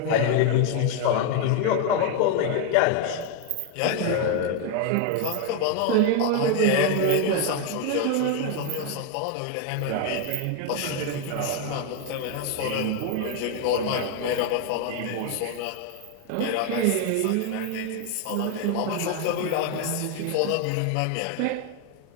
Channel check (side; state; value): both; different; correlation 0.01